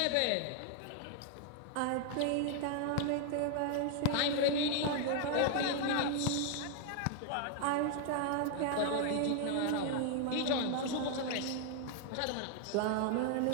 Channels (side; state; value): both; different; correlation 0.00